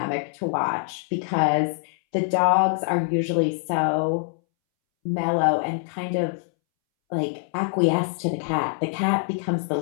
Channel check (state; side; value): silent; right; 62 dB below the other